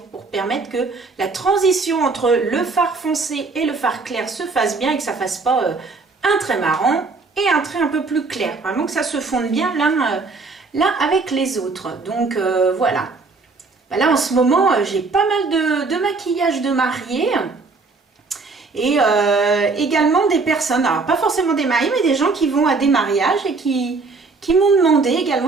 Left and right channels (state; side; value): quieter; left; 4.0 dB